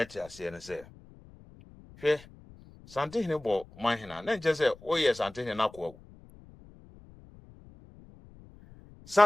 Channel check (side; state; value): left; noise; rumble, 22 dB below the sound